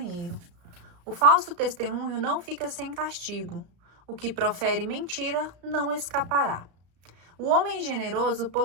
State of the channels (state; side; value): late; left; 34 ms